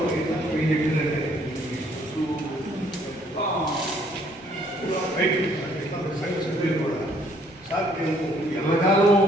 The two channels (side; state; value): both; normal; correlation 0.64